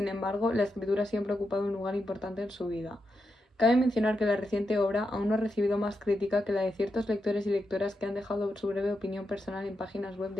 embargo la escritura siempre ha ocupado un lugar importante en su vida. Cabe mencionar que la reciente obra aún no ha recibido más crítica que la de ciertos lectores y lectoras que han dejado su breve opinión personal en páginas web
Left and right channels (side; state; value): both; normal; correlation 0.86